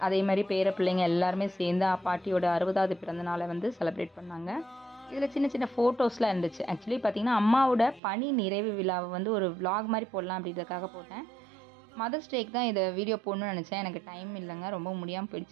அதே மாரி பேர பிள்ளைங்க எல்லாருமே சேர்ந்து பாட்டியோட 60வது பிறந்த நாளை வந்து செலிப்ரேட் பண்ணாங்க. இதில் சின்ன சின்ன ஃபோட்டோஸ்லாம் இருந்துச்சு. ஆக்சுவலி பார்த்தீங்கன்னா, அம்மாவோட பணி நிறைவு விழாவை வந்து ஒரு விளாக் மாரி போடலாம் அப்படின்றதுக்காக போட்டேன். மதர்ஸ் டேக்கு தான் இதை வீடியோ போடணும்னு நினச்சேன். எனக்கு டைம் இல்லைங்க. ரொம்ப முடியாமல்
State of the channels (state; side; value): drops out; left; at 8.0 s